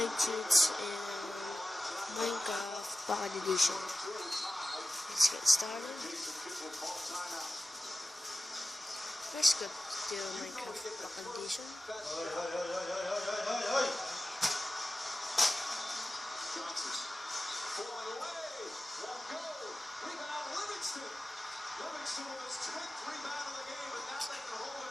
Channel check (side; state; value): both; normal; correlation 0.94